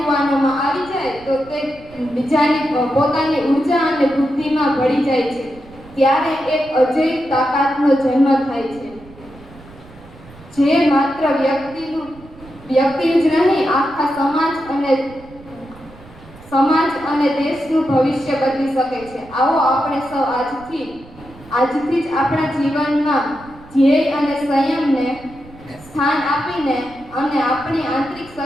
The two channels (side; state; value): right; noise; rumble, 21 dB below the sound